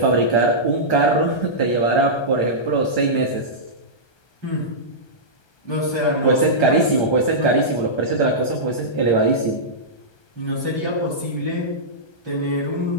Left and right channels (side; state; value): right; late; 1.3 ms